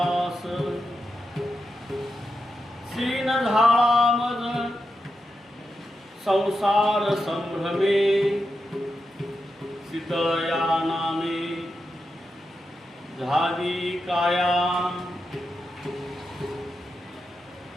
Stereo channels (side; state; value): both; normal; correlation 0.87